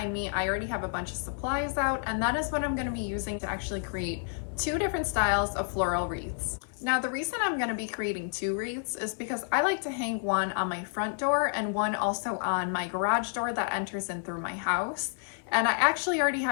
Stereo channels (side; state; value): right; silent; 58 dB below the other